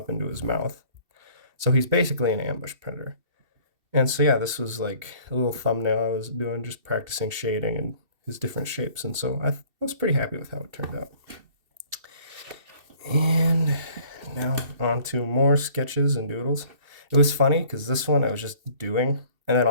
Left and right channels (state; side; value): late; left; 2.7 ms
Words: into his mouth. So he's basically an ambush predator. And so yeah, this was like a little thumbnail I was doing, just practicing shading and his different shapes. And so I was pretty happy with how it turned out. And now on to more sketches and doodles. It was funny because this one I was just doing, and then